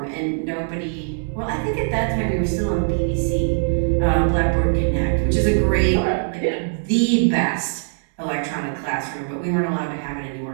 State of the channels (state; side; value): silent; left; digital silence